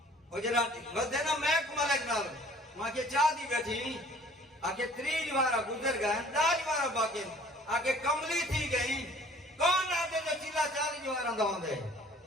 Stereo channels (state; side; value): normal; both; correlation 0.53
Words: وہ جڑا ودے نا محک ملک نال ماں کے چاہ دی بیٹھی آگے 3 نوارا گزر گئے 9 نوارا باقی ہیں آگے کملی تھی گئی کون آدھے جو چلا 4 نوارا دا ہوندے